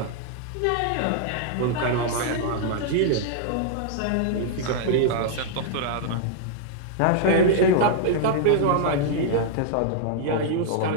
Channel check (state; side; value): different; both; correlation -0.01